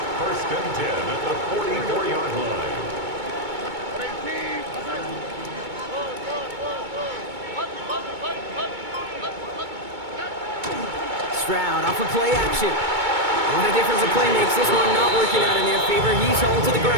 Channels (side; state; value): left; late; 2.2 ms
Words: First and 10 at the 44-yard line. Stroud off of play action. What a difference a play makes. This one not working out in their favor. He's hauled to the